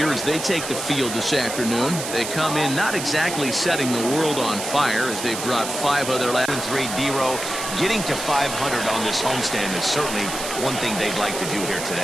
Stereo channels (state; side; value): noise; right; hiss, 6 dB below the sound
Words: as they take the field this afternoon, they come in not exactly setting the world on fire as they've dropped 5 of their last 3. D-Row getting to 500 on this homestand is certainly one thing they'd like to do here